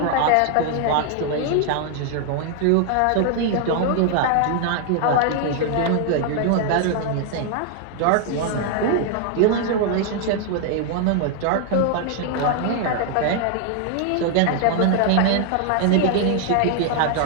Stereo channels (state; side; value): different; both; correlation 0.00